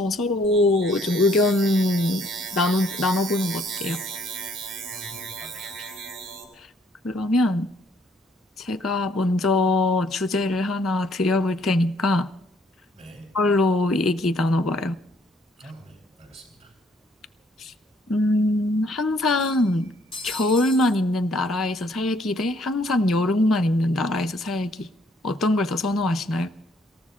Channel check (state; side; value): normal; both; correlation 0.65